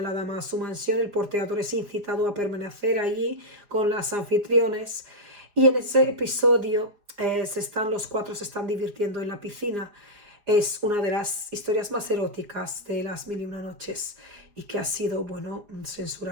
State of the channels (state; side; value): late; left; 4.9 ms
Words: la dama a su mansión, el porteador es incitado a permanecer allí con las anfitriones, y en ese episodio los cuatro se están divirtiendo en la piscina. Es una de las historias más eróticas de las mil y una noches y que ha sido, bueno,